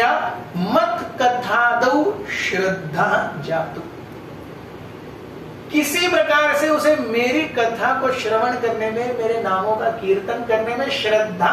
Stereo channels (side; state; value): both; identical; correlation 1.00